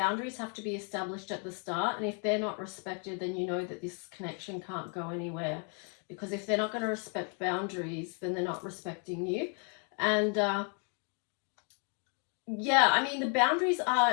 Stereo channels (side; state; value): right; quieter; 39.7 dB